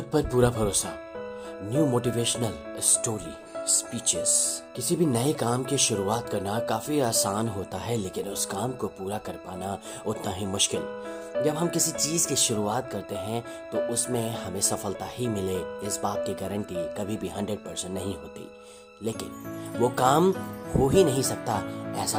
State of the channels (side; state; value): both; identical; correlation 1.00